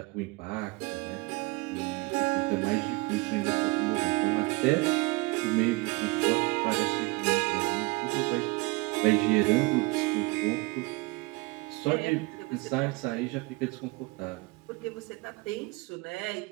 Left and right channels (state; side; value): quieter; left; 24.7 dB